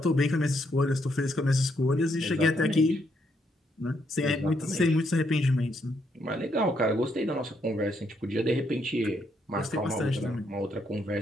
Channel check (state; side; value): normal; both; correlation 0.75